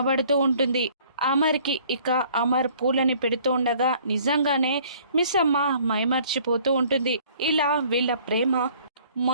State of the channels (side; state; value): both; inverted; correlation -0.56